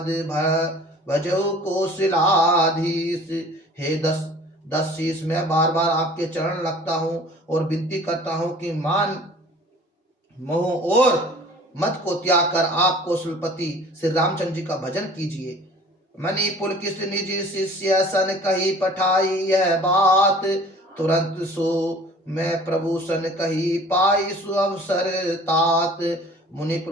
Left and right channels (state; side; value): normal; both; correlation 0.47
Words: भजो कौशलाधीश। हे दस शीस, मैं बार बार आपके चरण लगता हूँ और विनती करता हूँ कि मान मोह और मत को त्याग कर आप कौशलपति श्री रामचंद्र जी का भजन कीजिए। मणि पुलकित निज शिष्य सन कही पठाई यह बात। तुरंत सो मैं प्रभु सन कही पाई सु अवसर तात। मुनि